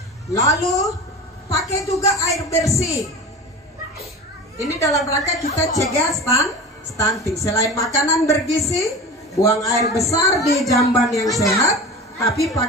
Lalu pakai juga air bersih. Ini dalam rangka kita cegah stunting. Selain makanan bergizi, buang air besar di jamban yang sehat, tapi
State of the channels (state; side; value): normal; both; correlation 0.32